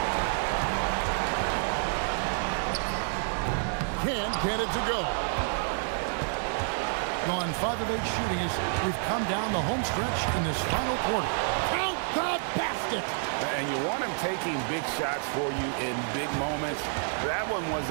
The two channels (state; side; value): silent; left; 59 dB below the other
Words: Can't get it to go. Gone 5 of 8 shooting as we've come down the home stretch in this final quarter. Count the basket. And you want him taking big shots for you in big moments. That one was